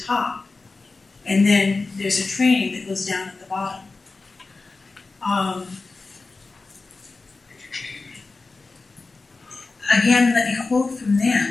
top. And then there's a training that goes down at the bottom. Again, let me quote from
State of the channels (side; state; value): right; quieter; 3.8 dB